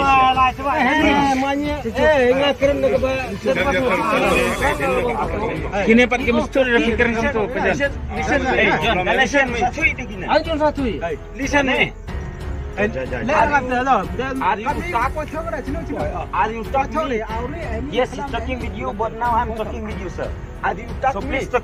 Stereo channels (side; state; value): both; identical; correlation 1.00